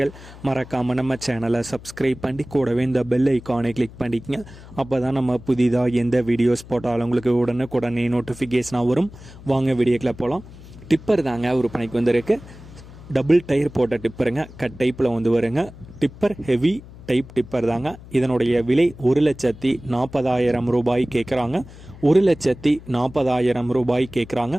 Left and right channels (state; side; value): noise; left; hum, 18 dB below the sound